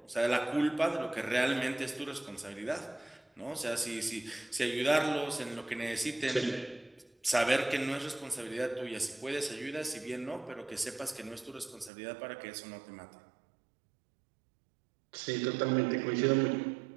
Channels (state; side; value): drops out; left; at 11.9 s